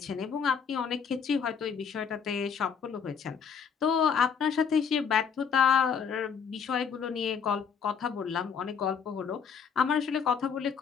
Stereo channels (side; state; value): right; quieter; 6.7 dB